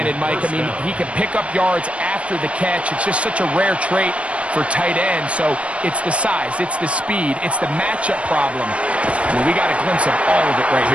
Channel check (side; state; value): left; late; 0.062 ms